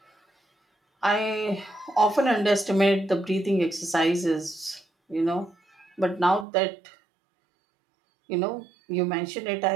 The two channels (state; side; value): drops out; left; at 6.5 s